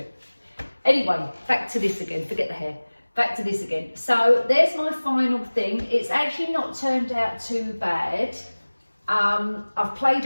Anyway, back to this again. Forget the hair. Back to this again. So there's my final thing. It's actually not turned out too bad. I've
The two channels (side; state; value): both; inverted; correlation -1.00